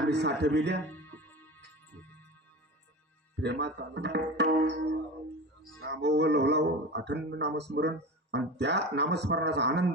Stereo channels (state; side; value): normal; both; correlation 0.30